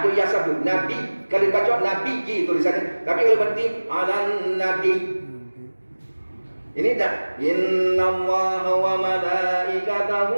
yang sebut nabi, kalau dibaca nabi tulisannya, tapi kalau berarti 'alan nabi. Ini tak. Inna Allah wa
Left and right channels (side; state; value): both; inverted; correlation -1.00